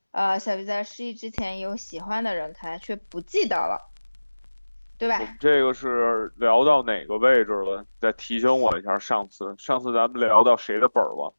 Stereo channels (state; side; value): inverted; both; correlation -1.00